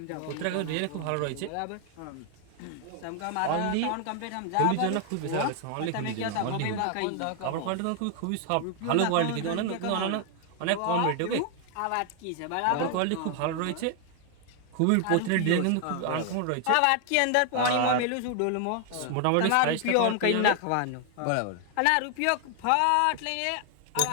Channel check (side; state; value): both; different; correlation 0.00